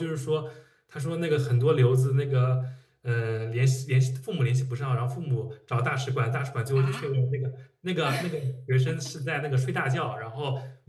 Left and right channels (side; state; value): both; identical; correlation 1.00